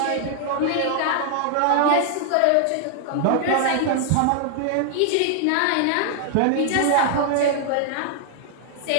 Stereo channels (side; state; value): both; different; correlation 0.00